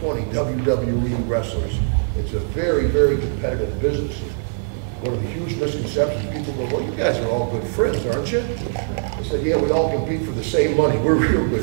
WWE wrestlers. It's a very, very competitive business. One of the huge misconceptions, people go, well, you guys are all good friends, aren't you? I said, yeah, we all compete for the same money. We're real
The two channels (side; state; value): left; silent; digital silence